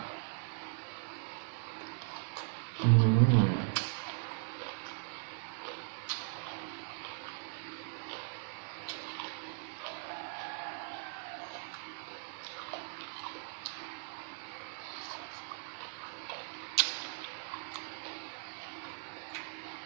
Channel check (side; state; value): left; silent; digital silence